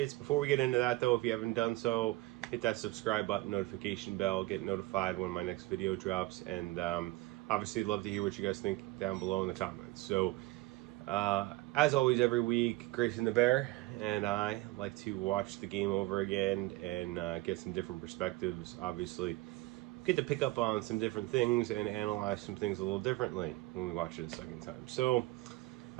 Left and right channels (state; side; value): quieter; left; 19.7 dB